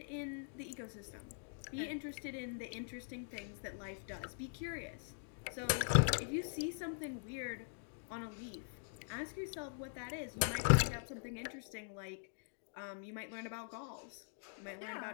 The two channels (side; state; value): right; silent; digital silence